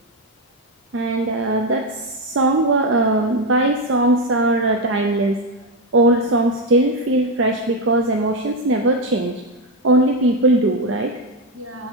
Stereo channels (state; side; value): normal; both; correlation 0.08